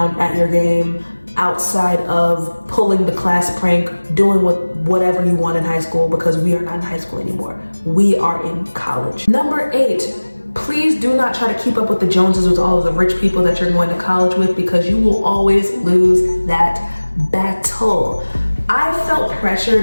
at your game, outside of pulling the class prank, doing whatever you want in high school, because we are not in high school anymore. We are in college. Number 8, please do not try to keep up with the Joneses with all of the rich people that you're going to college with, because you will always lose that battle. I felt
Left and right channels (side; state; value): both; inverted; correlation -1.00